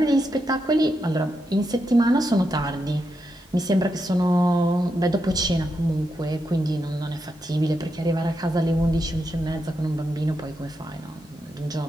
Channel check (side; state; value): both; normal; correlation 0.84